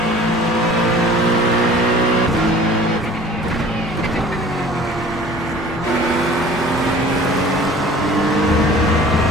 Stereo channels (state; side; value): normal; both; correlation 0.47